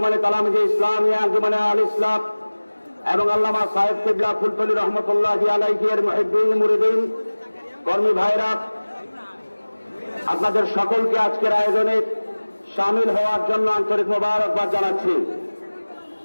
তালামিজে ইসলামিয়া আঞ্জুমানে আল ইসলাম এবং আল্লামা সাহেব কিবলা ফুলতলি রহমতুল্লাহি আলাইহি এর মুহিব্বিন মুরিদিন কর্মী ভাইরা, আপনাদের সকলকে আজকের আয়োজনে শামিল হওয়ার জন্য আন্তরিক মোবারকবাদ জানাচ্ছি।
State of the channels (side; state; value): both; inverted; correlation -1.00